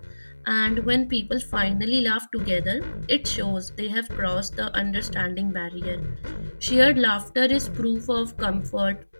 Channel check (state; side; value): inverted; both; correlation -1.00